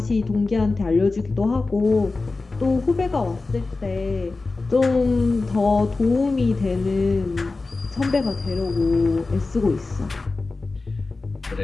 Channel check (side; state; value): right; quieter; 3.6 dB